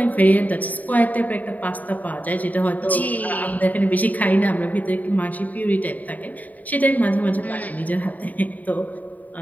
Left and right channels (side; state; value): right; late; 0.077 ms